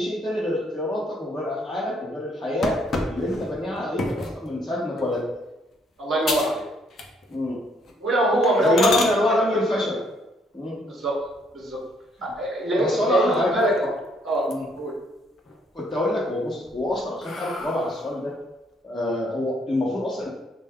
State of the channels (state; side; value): normal; both; correlation 0.68